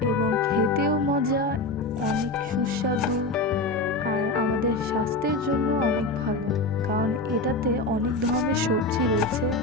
এবং খেতেও মজা, অনেক সুস্বাদু, আর আমাদের স্বাস্থ্যের জন্য অনেক ভালো, কারণ এটাতে অনেক ধরনের সবজি রয়েছে।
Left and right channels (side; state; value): right; quieter; 3.0 dB